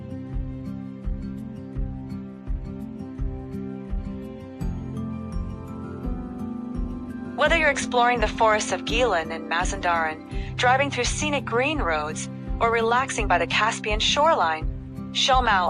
Whether you're exploring the forests of Gilan and Mazandaran, driving through scenic green roads, or relaxing by the Caspian shoreline, Shomal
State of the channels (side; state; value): both; identical; correlation 1.00